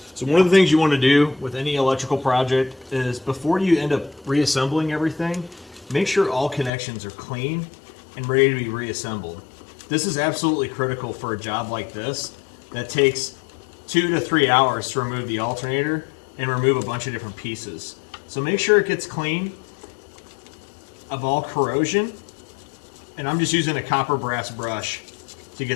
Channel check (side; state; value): right; drops out; at 6.7 s